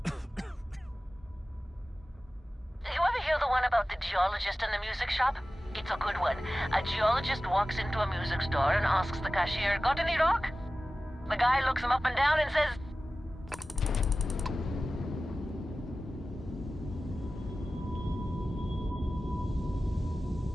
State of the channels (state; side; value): normal; both; correlation 0.96